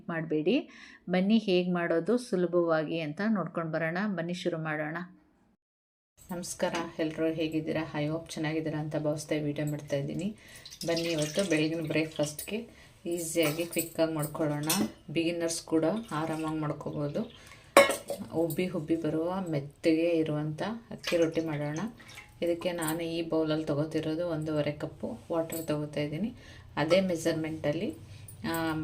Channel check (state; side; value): identical; both; correlation 1.00